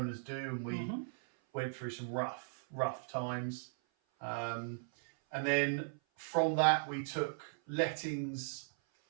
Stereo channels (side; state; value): left; silent; 53 dB below the other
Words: do, and we went through some rough times. And then from that, we took lettings